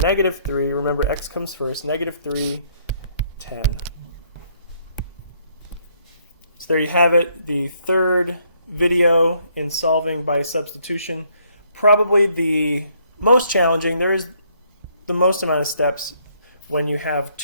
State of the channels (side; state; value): both; inverted; correlation -0.68